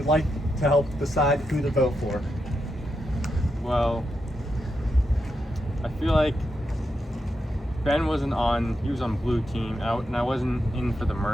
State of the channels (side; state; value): both; normal; correlation 0.85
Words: like to help decide who to vote for. Well, I feel like Ben wasn't on. He was on blue team, and I wasn't in for the